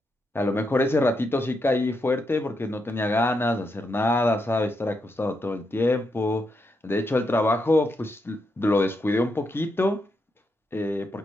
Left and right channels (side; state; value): both; normal; correlation 0.82